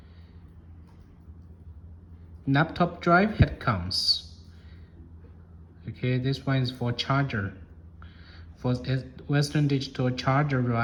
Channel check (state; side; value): identical; both; correlation 1.00